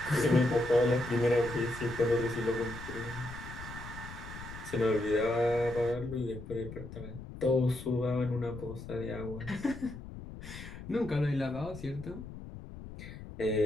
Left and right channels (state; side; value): noise; left; rumble, 12 dB below the sound